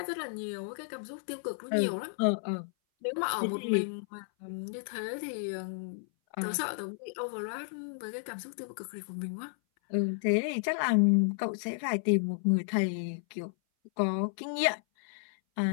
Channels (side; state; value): right; silent; 56 dB below the other